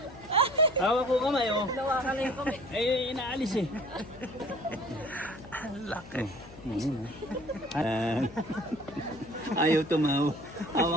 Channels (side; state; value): left; noise; hum, 18 dB below the sound